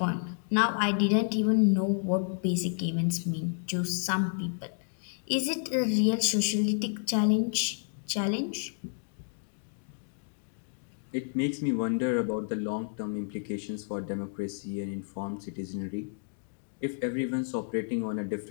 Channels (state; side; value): silent; right; digital silence